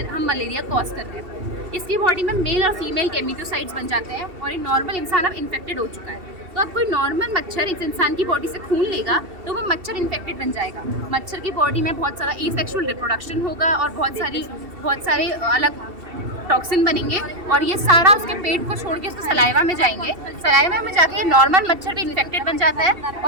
मलेरिया कॉज कर रहे हैं। इसकी बॉडी में मेल और फीमेल गेमेटोसाइट्स बन जाते हैं और एक नॉर्मल इंसान अब इन्फेक्टेड हो चुका है। तो अब कोई नॉर्मल मच्छर इस इंसान की बॉडी से खून लेगा तो वो मच्छर इन्फेक्टेड बन जाएगा। मच्छर की बॉडी में बहुत सारा एसेक्सुअल रिप्रोडक्शन होगा और बहुत सारे अलग टॉक्सिन बनेंगे और ये सारा उसके पेट को छोड़ के उसको सलाइवा में जाएंगे। सलाइवा में जाके नॉर्मल मच्छर भी इन्फेक्टेड बन जाता है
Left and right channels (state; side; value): late; left; 2.7 ms